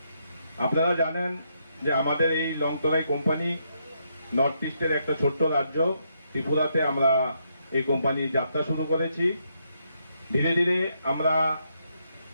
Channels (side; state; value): both; inverted; correlation -0.77